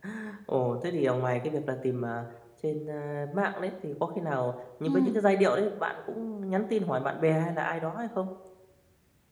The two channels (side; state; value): both; identical; correlation 1.00